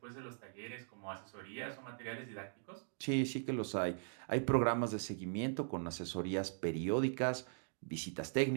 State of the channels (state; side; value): silent; left; digital silence